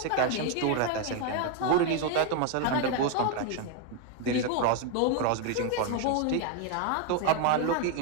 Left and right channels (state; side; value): different; both; correlation 0.01